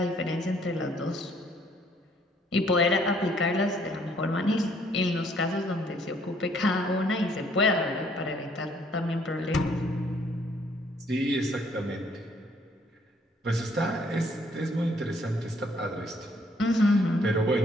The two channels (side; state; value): both; normal; correlation 0.64